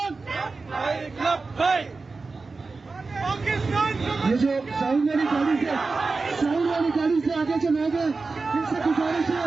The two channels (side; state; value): left; quieter; 4.0 dB